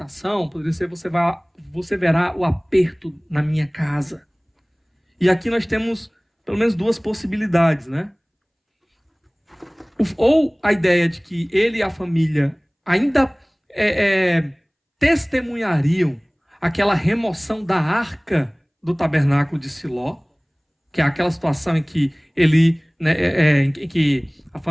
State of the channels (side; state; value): both; identical; correlation 1.00